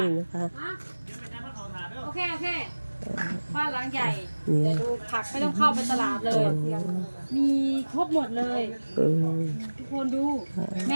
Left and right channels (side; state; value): both; inverted; correlation -1.00